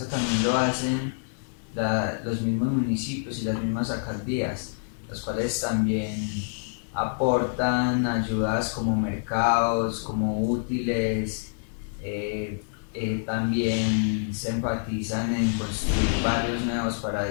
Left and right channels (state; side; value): silent; right; digital silence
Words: también lo hacen los mismos municipios y las mismas alcaldías, los cuales también aportan ayudas como mercados, como útiles. También se enfatizan en construir barrios nuevos para